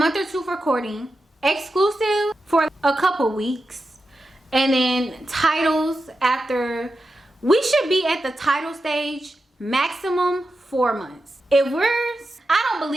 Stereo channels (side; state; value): both; normal; correlation 0.90